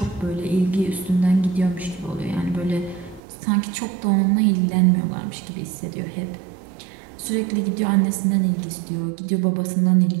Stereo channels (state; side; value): drops out; left; at 3.2 s